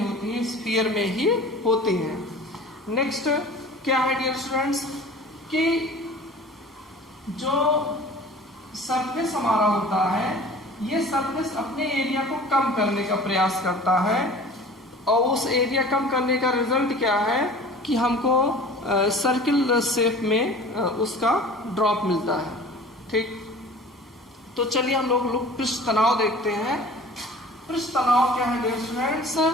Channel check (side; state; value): both; normal; correlation 0.43